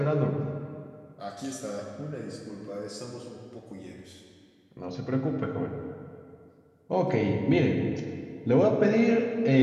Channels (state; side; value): identical; both; correlation 1.00